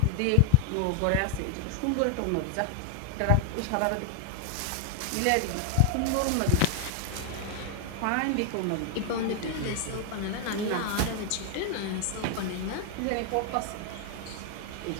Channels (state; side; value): different; both; correlation 0.00